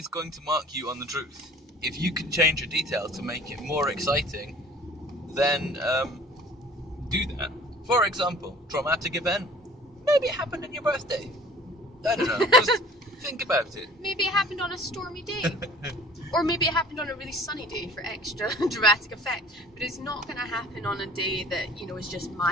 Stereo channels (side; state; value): both; normal; correlation 0.48